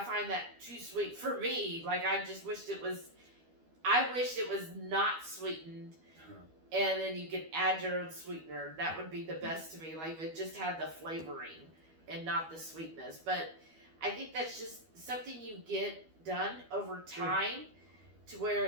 find that too sweet for me. Like, I just wished it was not sweetened. And then you could add your own sweetener. That would be the best to me. Like, if it just had the flavoring and not the sweetness. But I think that's just something you get done over time to where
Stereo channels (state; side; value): late; left; 12 ms